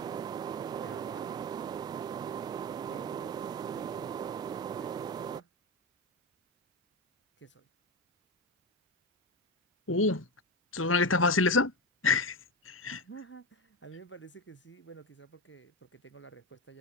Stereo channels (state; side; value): normal; both; correlation 0.16